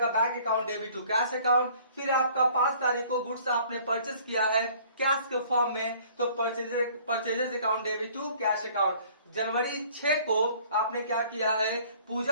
bank account debit to cash account. फिर आपका 5 तारीख को गुड्स आपने परचेस किया है कैश के फॉर्म में, तो purchases account debit to cash account. जनवरी 6 को आपने क्या किया है,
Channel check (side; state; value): both; inverted; correlation -0.54